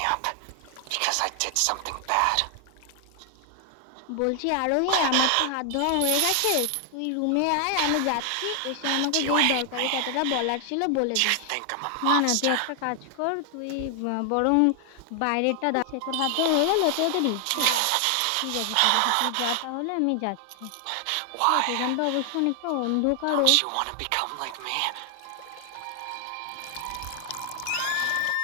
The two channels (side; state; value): both; different; correlation 0.00